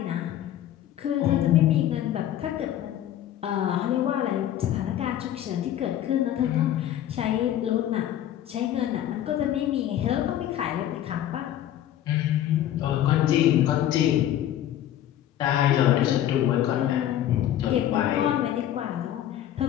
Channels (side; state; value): right; quieter; 11.8 dB